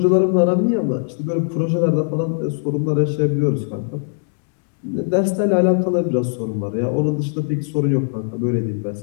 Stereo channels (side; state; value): right; silent; digital silence